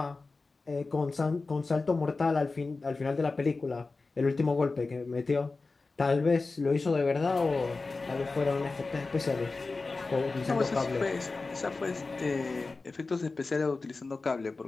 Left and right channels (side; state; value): right; quieter; 3.8 dB